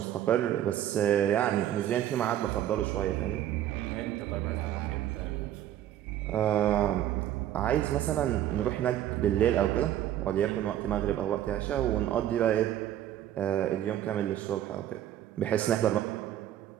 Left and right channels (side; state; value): left; quieter; 11.9 dB